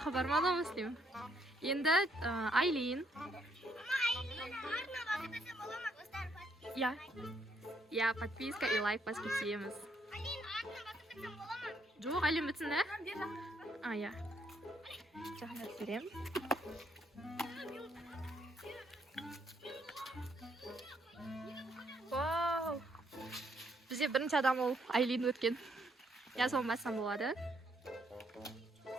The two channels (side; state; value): both; normal; correlation 0.71